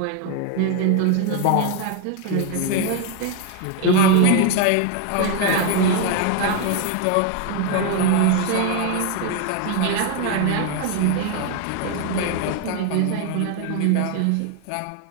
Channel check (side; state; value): both; different; correlation 0.01